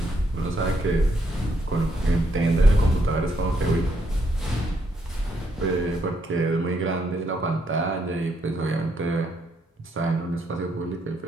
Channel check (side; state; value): both; normal; correlation 0.75